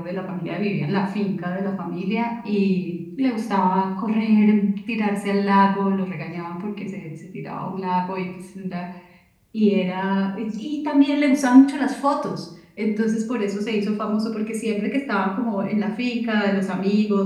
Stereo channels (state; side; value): identical; both; correlation 1.00